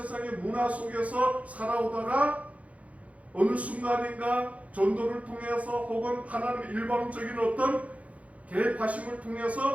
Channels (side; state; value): left; late; 0.066 ms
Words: 문화 속에서 살아오다가 어느 순간인가 전도를 통해서 혹은 하나님의 일방적인 어떤 개입하심을